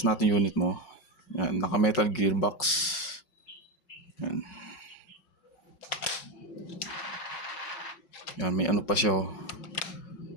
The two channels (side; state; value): right; late; 5.4 ms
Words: natin unit mo. Yan, naka-metal gearbox. Yan. Yan, may ano pa siya